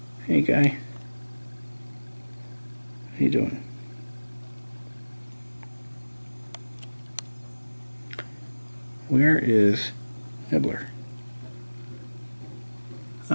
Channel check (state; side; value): inverted; both; correlation -1.00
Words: Hey, guy. How you doing? Where is Nibbler?